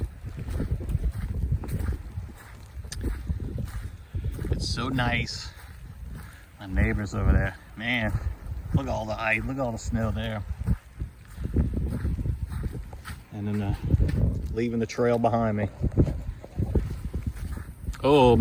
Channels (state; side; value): identical; both; correlation 1.00